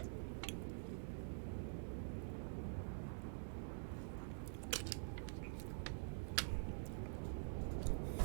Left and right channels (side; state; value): left; silent; digital silence